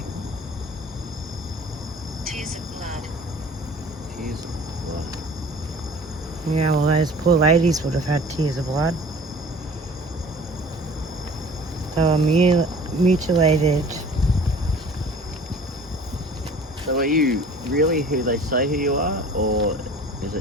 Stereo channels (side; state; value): both; normal; correlation 0.46